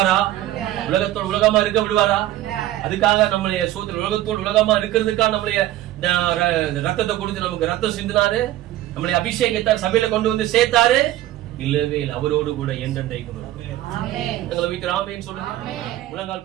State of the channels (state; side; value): quieter; left; 14.5 dB